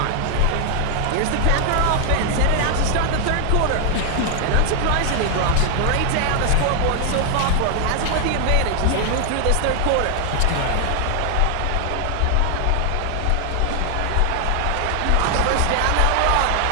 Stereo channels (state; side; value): different; both; correlation 0.00